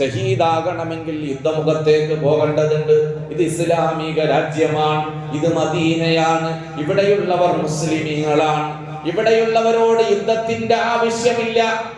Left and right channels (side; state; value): both; identical; correlation 1.00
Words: യുദ്ധമുഖത്തേക്ക് പോകേണ്ടതുണ്ട്. ഇത് ഇസ്ലാമിക രാജ്യമാണ്, ഇത് മദീനയാണ്, ഇവിടെയുള്ളവർ മുസ്ലിമീങ്ങളാണ്. ഇവിടെയുള്ളവരോട് യുദ്ധത്തിന്റെ ആവശ്യമില്ല.